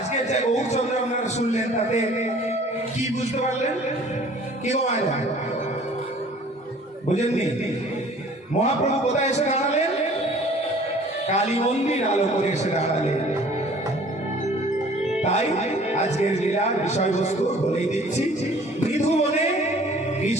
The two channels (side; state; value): both; normal; correlation 0.51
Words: যে গৌরচন্দ্র আপনারা শুনলেন তাতে কি বুঝতে পারলেন? কি বুঝেননি? মহাপ্রভু কোথায় এসে দাঁড়ালেন? কালী মন্দির আলো করে এসে দাঁড়ালেন। তাই আজকের লীলার বিষয়বস্তু বলেই দিচ্ছি, মৃধুবনে